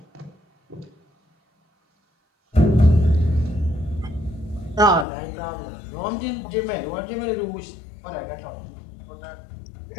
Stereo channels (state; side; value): drops out; right; at 5.1 s